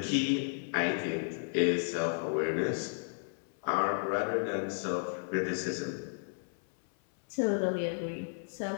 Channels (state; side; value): silent; right; 56 dB below the other